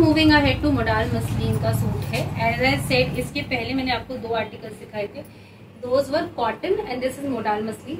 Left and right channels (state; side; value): identical; both; correlation 1.00